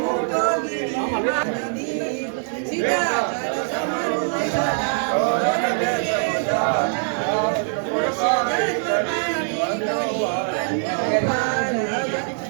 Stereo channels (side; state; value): left; silent; 64 dB below the other